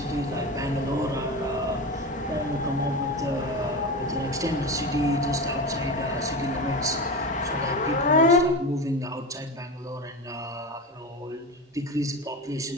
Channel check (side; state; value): both; normal; correlation 0.24